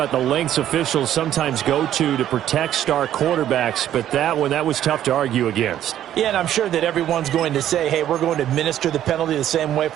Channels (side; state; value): left; quieter; 11.5 dB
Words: the lengths officials sometimes go to protect star quarterbacks, but that was tough to argue against. Yeah, and I'm sure that everyone's going to say, hey, we're going to administer the penalty the same way